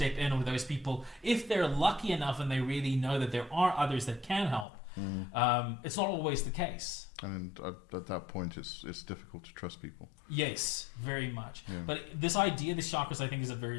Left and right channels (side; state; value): right; drops out; at 4.7 s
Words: in with those people if they're lucky enough and they really know that there are others that can help. It's not always the case. And at that point, it's difficult to trust people. Yes, very much. Yeah. But this idea, the chakras, I think is a very